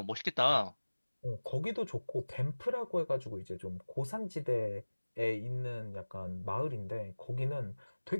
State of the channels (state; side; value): inverted; both; correlation -1.00